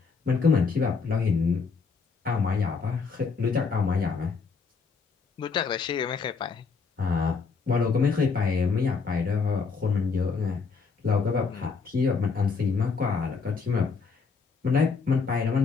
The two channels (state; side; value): quieter; right; 5.1 dB